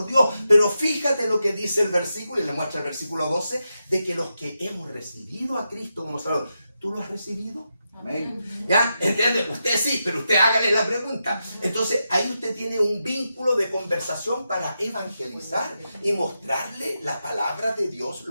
Dios. Pero fíjate lo que dice el versículo, y le muestra el versículo 12, de que los que hemos recibido a Cristo como Salvador. ¿Tú lo has recibido? Amén. ¿Ya? ¿Entiende? Usted sí, pero usted hágale la pregunta. Entonces ahí usted tiene un vínculo de conversación para evangelizar y mostrarle la palabra de Dios,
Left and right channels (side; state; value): both; inverted; correlation -0.87